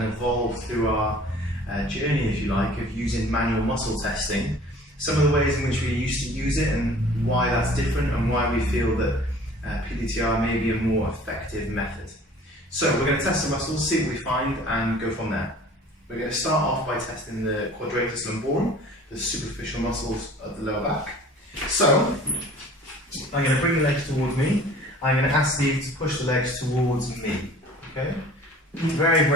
evolved through our journey, if you like, of using manual muscle testing. Some of the ways in which we used to use it and why that's different, and why we feel that P-DTR may be a more effective method. So we're going to test the muscles, see what we find, and go from there. We're going to start off by testing the quadratus lumborum, the superficial muscles of the lower back. So I'm going to bring the legs towards me. I'm going to ask Steve to push the legs towards me. Okay? Very,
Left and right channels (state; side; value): normal; both; correlation 0.48